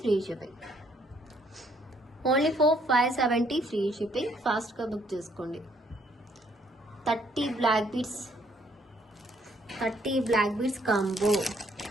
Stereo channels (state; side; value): normal; both; correlation 0.67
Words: free shipping, only 570 free shipping. ఫాస్ట్గా బుక్ చేసుకోండి. 30 బ్లాక్ బీడ్స్ కాంబో.